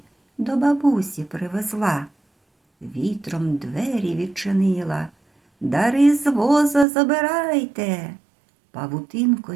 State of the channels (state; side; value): drops out; left; at 6.9 s